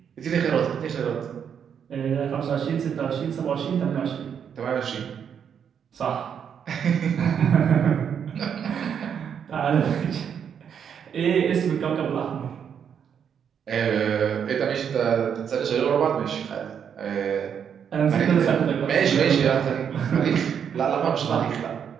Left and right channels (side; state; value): left; quieter; 7.8 dB